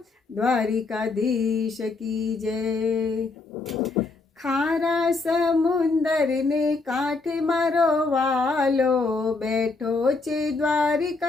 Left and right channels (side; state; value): right; quieter; 3.7 dB